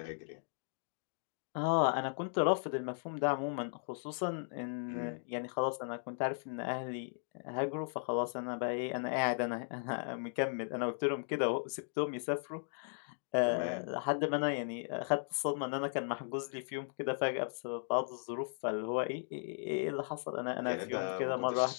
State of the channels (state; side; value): silent; right; digital silence